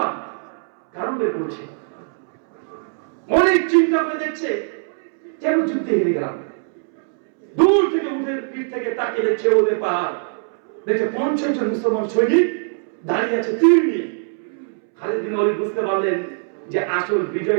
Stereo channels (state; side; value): silent; left; 65 dB below the other